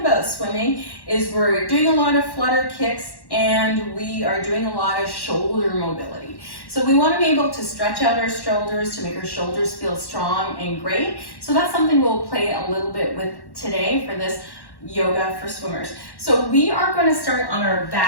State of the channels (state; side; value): late; right; 1.1 ms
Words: swimming is we're doing a lot of flutter kicks and we are doing a lot of shoulder mobility. So we want to be able to stretch out our shoulders to make our shoulders feel strong and great. So that's something we'll play a little bit with today for this yoga for swimmers. So we are going to start on our